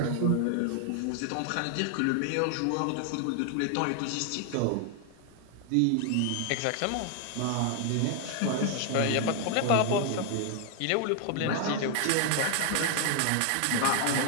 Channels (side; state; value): both; different; correlation 0.00